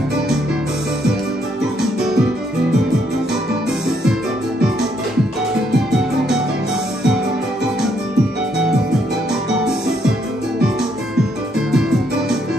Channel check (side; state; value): both; normal; correlation 0.72